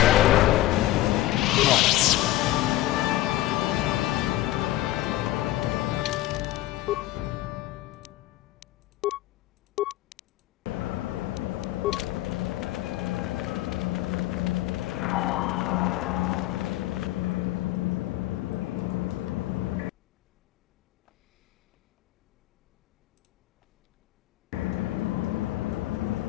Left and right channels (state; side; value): quieter; right; 15.6 dB